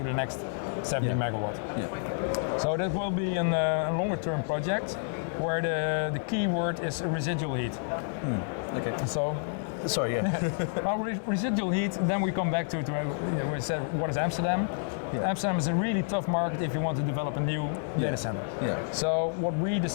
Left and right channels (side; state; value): right; silent; 58 dB below the other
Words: the next 70 megawatt. So that will be a longer term project where the key word is residual heat. Okay. So, sorry, well, residual heat, then we come back to we said, what is Amsterdam? Amsterdam is a really tough market if you want to develop a new data center. So what we